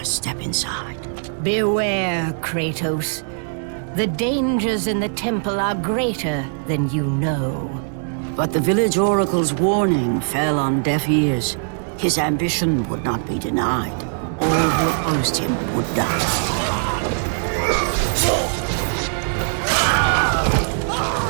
step inside. Beware, Kratos. The dangers in the temple are greater than you know. But the village oracle's warning fell on deaf ears. His ambition would not be denied. All who opposed him would die.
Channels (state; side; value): silent; left; digital silence